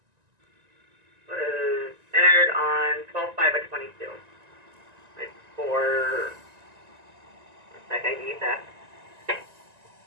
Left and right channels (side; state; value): left; late; 1.9 ms